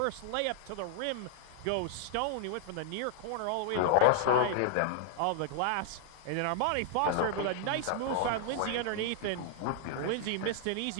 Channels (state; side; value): different; both; correlation 0.00